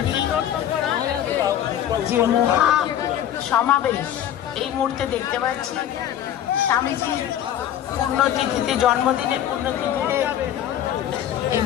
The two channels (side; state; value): right; quieter; 11.0 dB